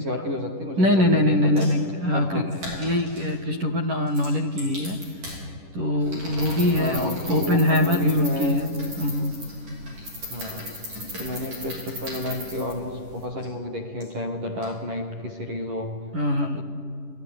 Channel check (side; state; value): left; late; 11 ms